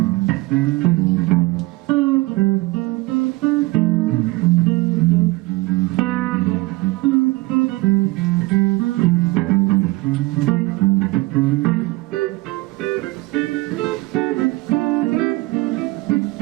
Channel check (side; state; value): left; quieter; 21.4 dB